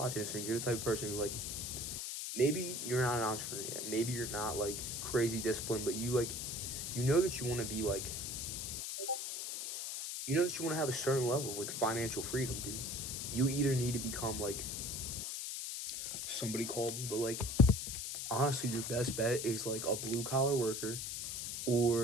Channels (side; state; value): left; noise; hiss, 4 dB below the sound